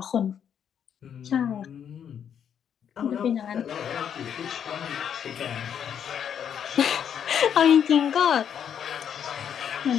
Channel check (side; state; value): right; quieter; 8.5 dB